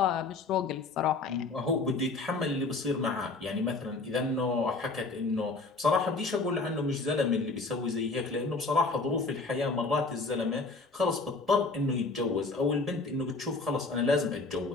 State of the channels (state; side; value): quieter; right; 3.7 dB